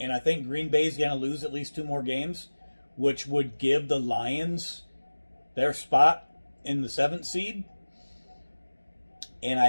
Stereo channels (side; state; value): both; inverted; correlation -1.00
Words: I think Green Bay's going to lose at least 2 more games, which would give the Lions their spot in the 7th seed. And